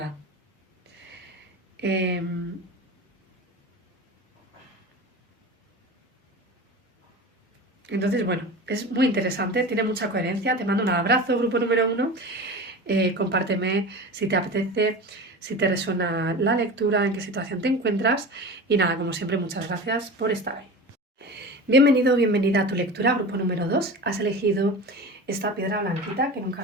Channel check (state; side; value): normal; both; correlation 0.31